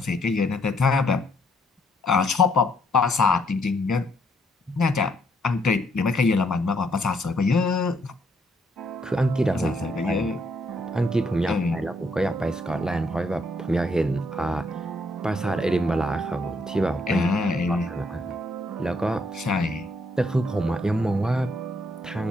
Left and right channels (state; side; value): normal; both; correlation 0.71